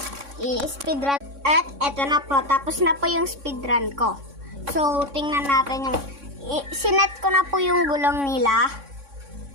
I-speed run. At eto na po. Tapos na po yung speed run ko. So, tingnan natin yung... Sinet ko na po yung gulong nila.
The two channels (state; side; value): late; left; 3.6 ms